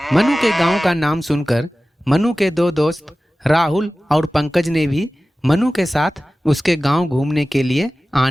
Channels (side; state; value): both; normal; correlation 0.96